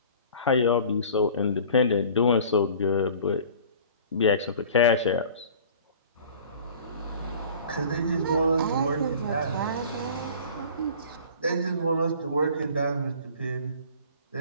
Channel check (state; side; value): inverted; both; correlation -0.45